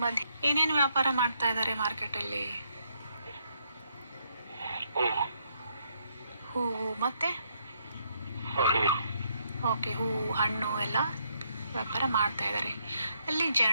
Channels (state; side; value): inverted; both; correlation -0.74